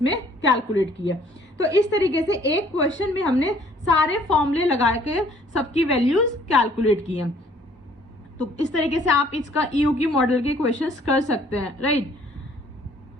कैलकुलेट किया। तो इस तरीके से एक क्वेश्चन में हमने सारे फॉर्मूले लगा के सबकी वैल्यूज कैलकुलेट की है। तो इस तरीके से आप इसका EOQ मॉडल के क्वेश्चंस कर सकते हैं, right.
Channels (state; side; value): normal; both; correlation 0.58